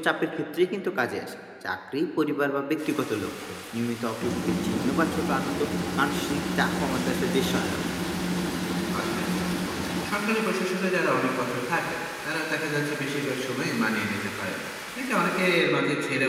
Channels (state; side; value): identical; both; correlation 1.00